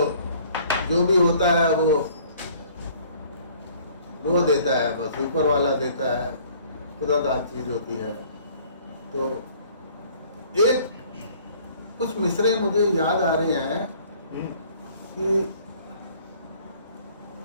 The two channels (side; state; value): both; inverted; correlation -0.55